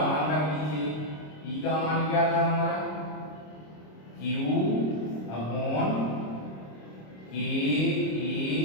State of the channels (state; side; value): late; right; 26 ms